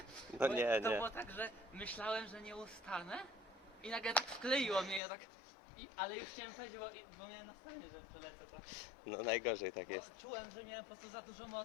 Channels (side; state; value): right; drops out; at 5.0 s